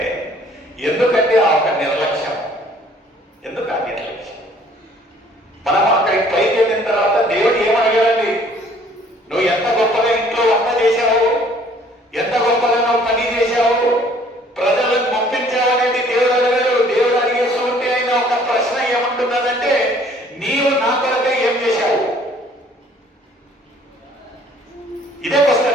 ఎందుకంటే ఆ ఒక నిర్లక్ష్యం. ఎందుకు ఆ నిర్లక్ష్యం? మనం అక్కడికి పైకి వెళ్ళిన తర్వాత దేవుడు ఏమడిగాడండి? నువ్వు ఎంత గొప్పగా ఇంట్లో వంట చేశావు, ఎంత గొప్పగా నువ్వు పని చేశావు, ప్రజలను పంపించావు అనేది దేవుడు అడిగాడు. దేవుడు అడిగేస్తూ ఉంటే ఆయన ఒక ప్రశ్న ఏమంటున్నదంటే, నీవు నా కొరకే ఏం చేశావు? ఇదే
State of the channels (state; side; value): normal; both; correlation 0.57